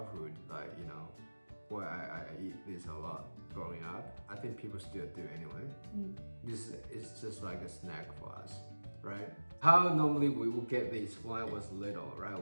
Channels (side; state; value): both; inverted; correlation -1.00